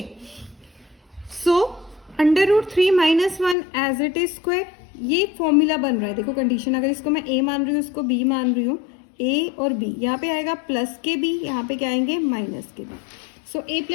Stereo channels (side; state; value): right; drops out; at 3.6 s